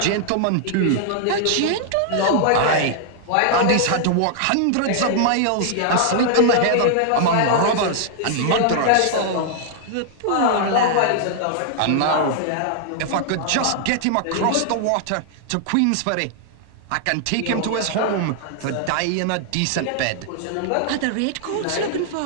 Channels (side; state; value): both; different; correlation -0.01